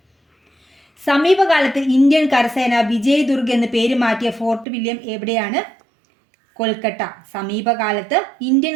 സമീപകാലത്ത് ഇന്ത്യൻ കരസേന വിജയ് ദുർഗ് എന്ന് പേര് മാറ്റിയ ഫോർട്ട് വില്യം എവിടെയാണ്? കൊൽക്കത്ത. സമീപകാലത്ത് ഇന്ത്യൻ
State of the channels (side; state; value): left; drops out; at 4.7 s